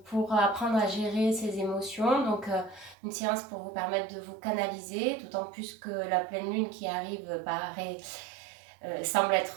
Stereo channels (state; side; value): drops out; left; at 3.0 s